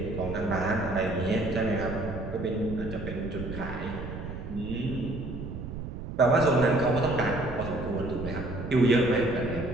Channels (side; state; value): right; noise; rumble, 8 dB below the sound